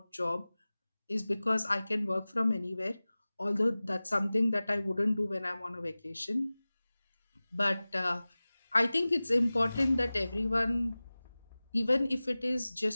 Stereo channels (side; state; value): both; inverted; correlation -0.98